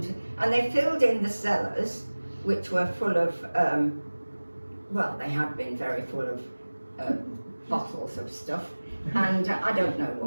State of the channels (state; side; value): inverted; both; correlation -1.00